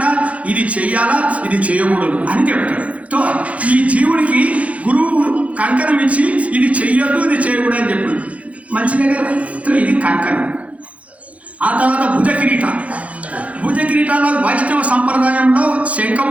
ఇది చెయ్యాలా, ఇది చేయకూడదు అని చెప్తాడు. సో ఈ జీవుడికి గురువు కంకణం ఇచ్చి ఇది చెయ్యొద్దు, ఇది చేయకూడదు అని చెప్పాడు. మంచిదే కదా. సో ఇది కంకణం. ఆ తర్వాత భుజ కిరీటాల వైష్ణవ సంప్రదాయంలో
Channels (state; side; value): late; left; 0.065 ms